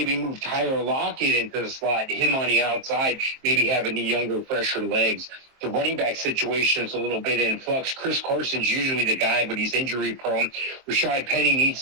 move Tyler Lockett into the slot, him on the outside, maybe having the younger, fresher legs. The running back situation is a little bit in flux. Chris Carson's usually the guy, but he's injury prone. Rashad Penny needs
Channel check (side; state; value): left; late; 23 ms